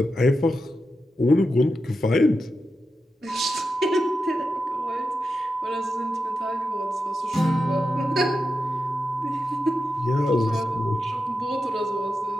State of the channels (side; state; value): both; normal; correlation 0.89